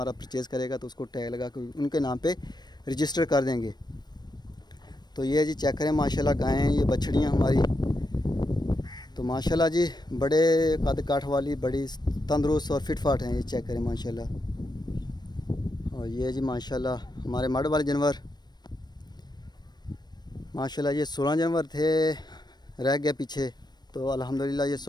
परचेज़ करेगा तो उसको टैग लगा कर उनके नाम पे रजिस्टर कर देंगे। तो ये जी चेक करें माशाल्लाह गायें, ये बछड़ियाँ हमारी, तो माशाल्लाह जी बड़े कद काठ वाली, बड़ी तंदुरुस्त और फिट फाट हैं, ये चेक करें माशाल्लाह। और ये जी माशाल्लाह हमारे मड वाले जानवर माशाल्लाह, ये 16 जानवर थे, रह गए पीछे। तो अल्हम्दुलिल्लाह ये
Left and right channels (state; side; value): late; right; 0.20 ms